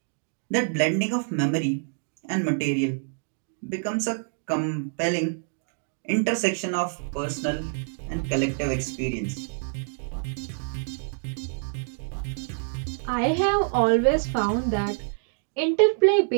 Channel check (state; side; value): silent; left; digital silence